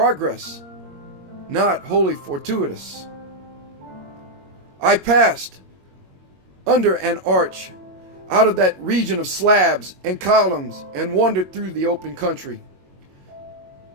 not wholly fortuitous. I passed under an arch out of that region of slabs and columns and wandered through the open country,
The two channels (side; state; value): left; late; 22 ms